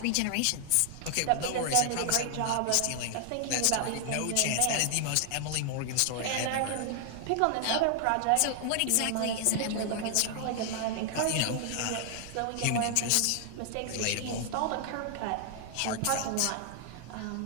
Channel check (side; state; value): both; different; correlation 0.00